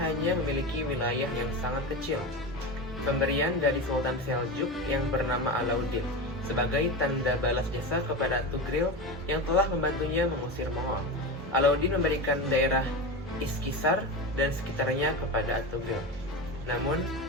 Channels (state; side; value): normal; both; correlation 0.22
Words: memiliki wilayah yang sangat kecil. Pemberian dari Sultan Seljuk yang bernama Alauddin sebagai tanda balas jasa kepada Ertugrul yang telah membantunya mengusir Mongol. Alauddin memberikan daerah Iskisar dan sekitarnya kepada Ertugrul. Namun,